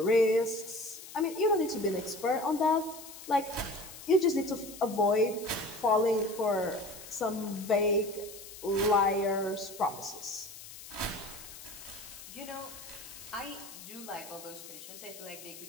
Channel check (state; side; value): noise; left; hiss, 14 dB below the sound